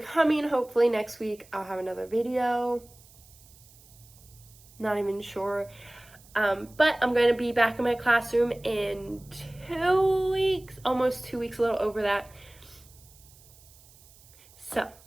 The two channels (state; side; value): noise; right; hiss, 25 dB below the sound